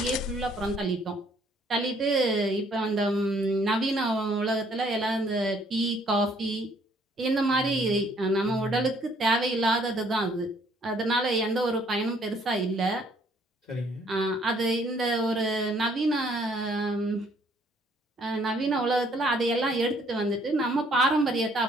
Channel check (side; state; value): both; normal; correlation 0.63